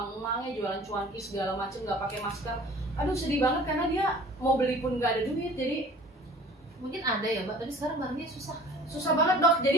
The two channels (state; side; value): normal; both; correlation 0.47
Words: jualan cuanki segala macem nggak pakai masker. Aduh sedih banget karena dia mau beli pun nggak ada duit. Jadi Mungkin ada ya Mbak, tapi sekarang barangnya susah. Susah banget dok.